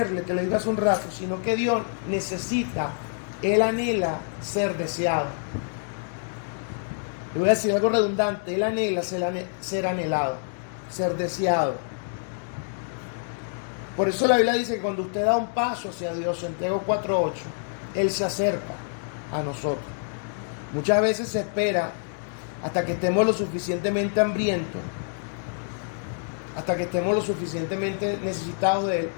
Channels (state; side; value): silent; right; digital silence